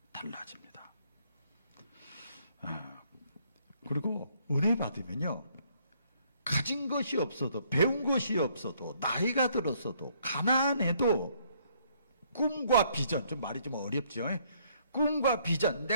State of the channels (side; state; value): both; inverted; correlation -0.67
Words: 달라집니다. 그리고 은혜 받으면요, 가진 것이 없어도, 배운 것이 없어도, 나이가 들었어도, 가난해도 꿈과 비전, 좀 말이 좀 어렵죠. 꿈과 비전,